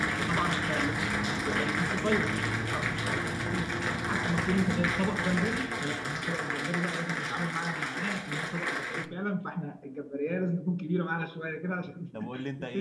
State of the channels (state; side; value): identical; both; correlation 1.00